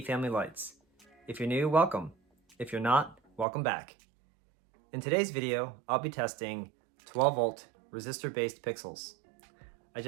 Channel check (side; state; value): left; drops out; at 3.5 s